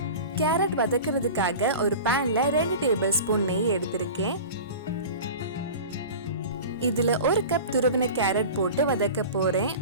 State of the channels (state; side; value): inverted; both; correlation -0.35